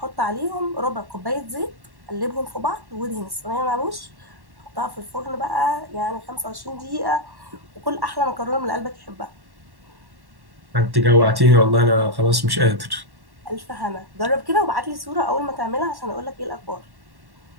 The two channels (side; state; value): left; late; 1.1 ms